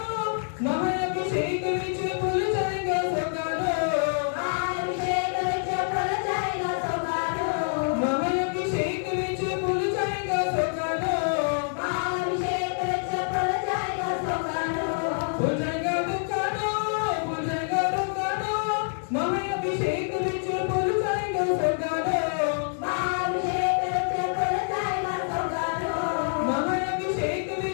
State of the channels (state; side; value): silent; right; 60 dB below the other